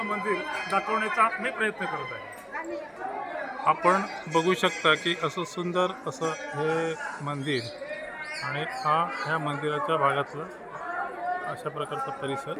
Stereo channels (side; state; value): both; identical; correlation 1.00